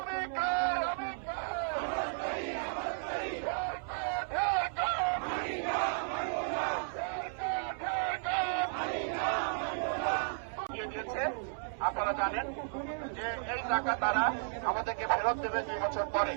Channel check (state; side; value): silent; left; 55 dB below the other